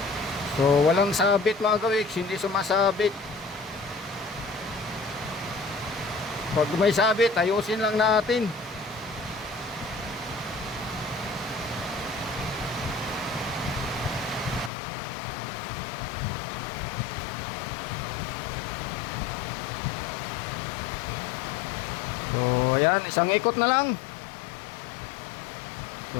So walang sabit mga gawiks, hindi sumasabit. Pag may sabit, ayusin lang natin. So ayan, isang ikot na lang.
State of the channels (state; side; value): drops out; right; at 14.7 s